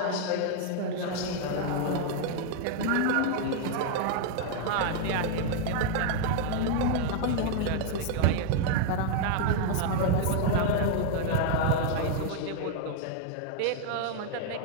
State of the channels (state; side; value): different; both; correlation 0.00